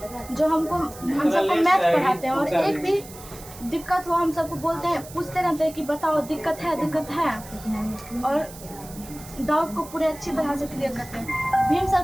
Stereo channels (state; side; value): noise; right; hiss, 17 dB below the sound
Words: जो हम सबको मैथ पढ़ाते हैं, और एक भी दिक्कत हो हम सबको बोलते हैं, पूछते रहते हैं कि बताओ दिक्कत है, और डाउट को पूरे अच्छी तरह से क्लियर करते हैं। भीम सर